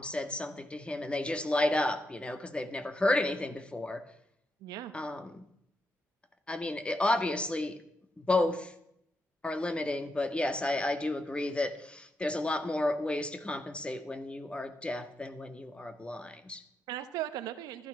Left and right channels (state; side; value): normal; both; correlation 0.83